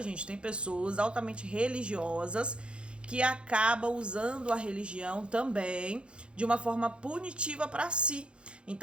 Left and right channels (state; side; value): late; left; 0.056 ms